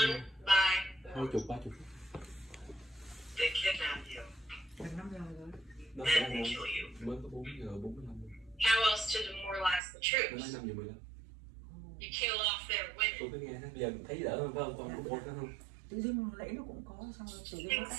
by 20, 30 phút. They kidnap you. Gần 5 giờ rồi. Nó sẽ Then they là kill you. mới có 4 giờ 45 phút. how else to demoralize the Nó troops? nói 5 giờ 15. You kill off their women. Tôi cứ nghe bây giờ thấy đỡ hơn phải không? Còn có 4 nữa không? Tự dưng nãy nó cũng có, xong rồi tự dưng nó Things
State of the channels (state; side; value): drops out; left; at 9.8 s